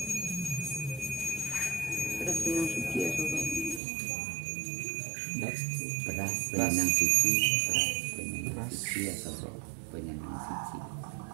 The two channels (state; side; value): drops out; left; at 3.8 s